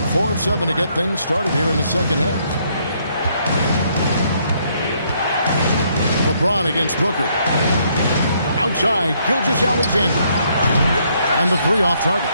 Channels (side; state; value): both; inverted; correlation -0.70